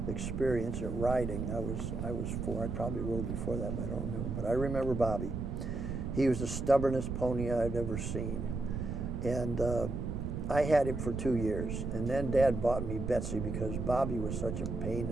experience at riding. I was 4. I probably rode before that, but I don't remember. But I remember Bobby. He was the stubbornest pony I'd ever seen. And I had him for 2 years. And then Dad bought me Betsy because Bobby was such a pain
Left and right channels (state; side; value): noise; right; rumble, 3 dB below the sound